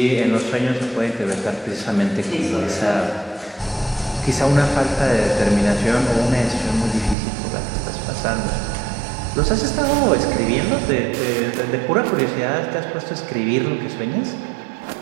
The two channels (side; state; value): left; drops out; at 7.2 s